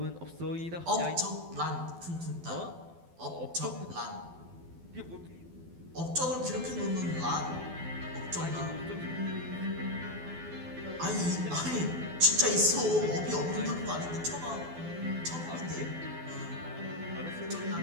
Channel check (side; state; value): left; late; 12 ms